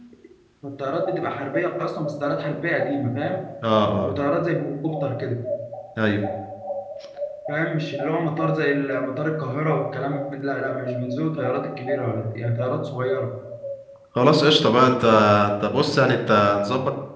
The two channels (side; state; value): both; identical; correlation 1.00